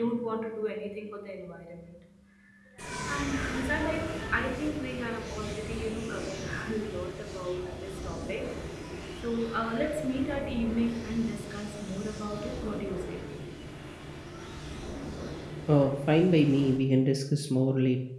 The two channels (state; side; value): identical; both; correlation 1.00